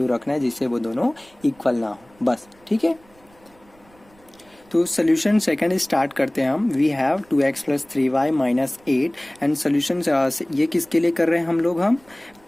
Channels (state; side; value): noise; right; rumble, 30 dB below the sound